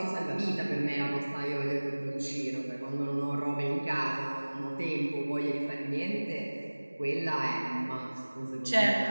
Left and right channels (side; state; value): both; inverted; correlation -1.00